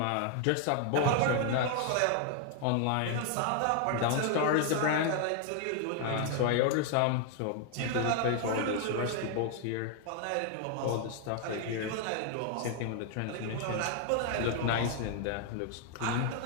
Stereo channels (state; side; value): different; both; correlation 0.00